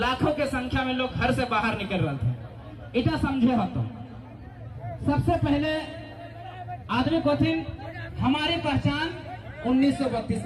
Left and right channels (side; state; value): both; identical; correlation 1.00